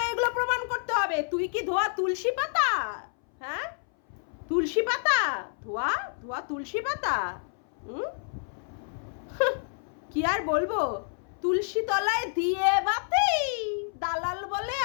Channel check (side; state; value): right; silent; 59 dB below the other